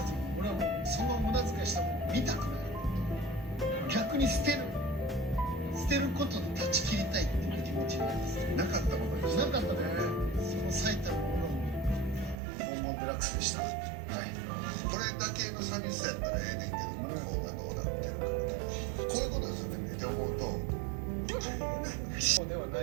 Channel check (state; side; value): drops out; left; at 12.4 s